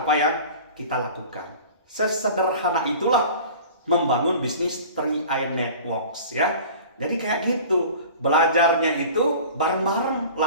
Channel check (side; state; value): both; inverted; correlation -0.41